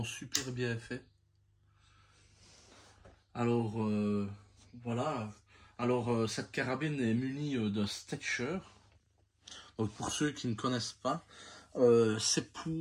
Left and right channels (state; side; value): identical; both; correlation 1.00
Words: super bien fait. Alors, voilà. Alors, cette carabine est munie de Stecher. Donc, pour ceux qui ne connaissent pas, c'est